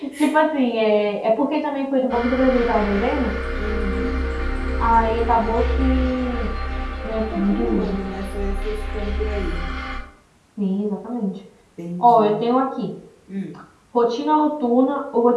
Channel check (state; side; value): identical; both; correlation 1.00